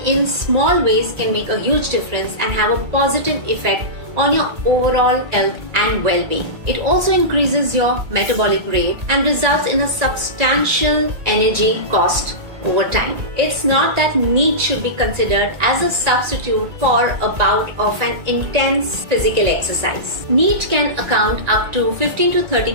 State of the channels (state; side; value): late; left; 1.8 ms